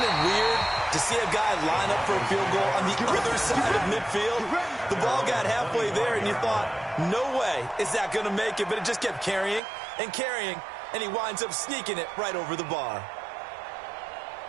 it weird to see a guy line up for a field goal on the other side of midfield? The ball got halfway there, and you thought, no way is that going to make it, but it just kept carrying and carrying, and he winds up sneaking it right over the bar.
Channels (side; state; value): left; drops out; at 9.6 s